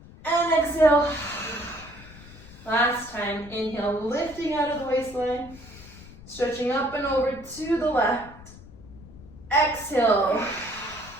And exhale. Last time, inhale, lifting out of the waistline, stretching up and over to the left. Exhale.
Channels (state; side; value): noise; left; rumble, 19 dB below the sound